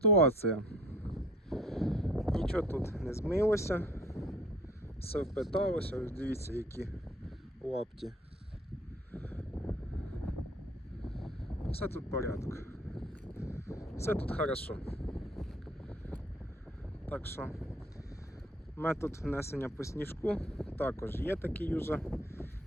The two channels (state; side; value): normal; both; correlation 0.54